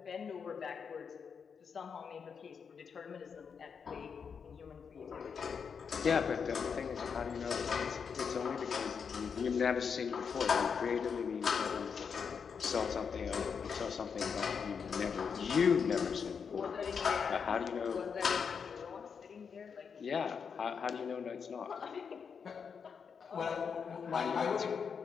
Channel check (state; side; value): quieter; right; 6.3 dB